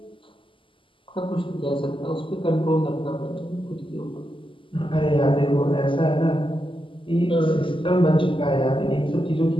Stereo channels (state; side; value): late; right; 0.25 ms